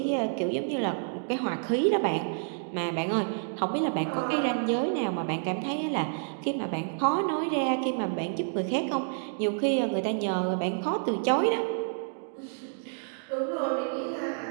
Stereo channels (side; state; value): left; silent; digital silence